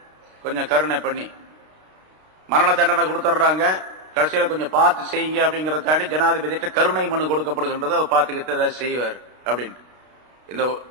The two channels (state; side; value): late; left; 32 ms